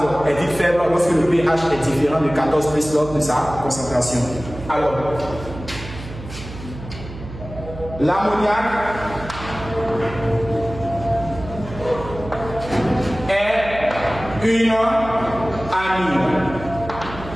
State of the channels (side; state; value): right; noise; hum, 12 dB below the sound